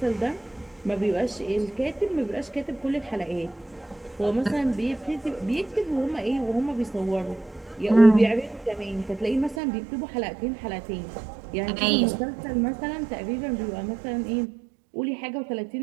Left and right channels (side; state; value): left; drops out; at 9.6 s